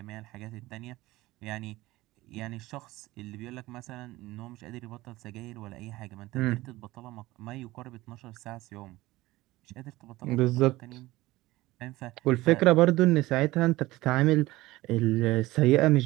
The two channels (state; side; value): quieter; left; 18.5 dB